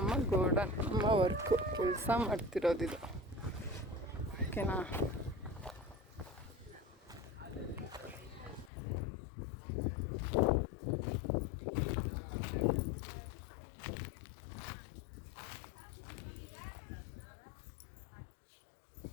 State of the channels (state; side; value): drops out; right; at 8.7 s